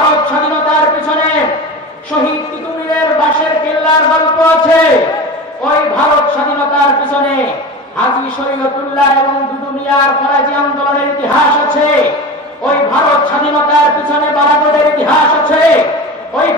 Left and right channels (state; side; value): normal; both; correlation 0.30